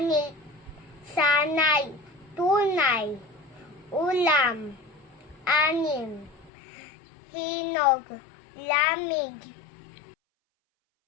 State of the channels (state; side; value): drops out; right; at 6.5 s